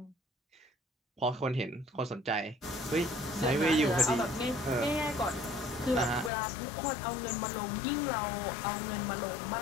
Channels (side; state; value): right; drops out; at 6.3 s